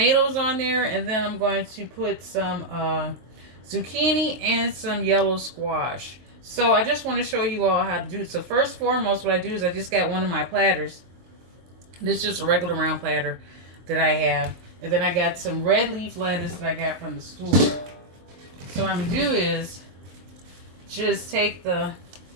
on there, and then I'm going to put some zucchini and some yellow squash. So I just want to show you all how to do it. So first and foremost, what I do is I just got one of my platters. This is just a regular round platter that I have. And then I got some red leaf lettuce that I got from the store. So what I'm going to do is just take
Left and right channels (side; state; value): left; late; 23 ms